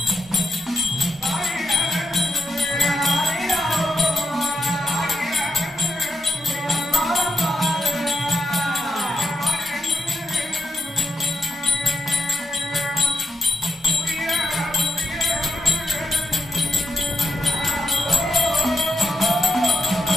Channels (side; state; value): both; normal; correlation 0.85